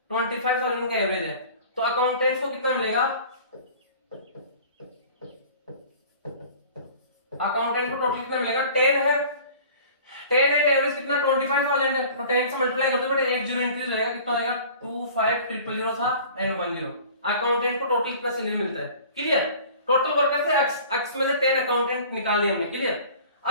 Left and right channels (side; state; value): both; inverted; correlation -0.45